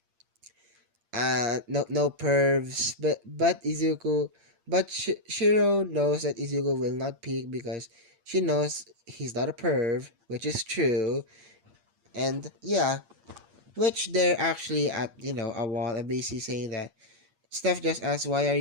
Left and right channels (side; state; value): left; late; 8.6 ms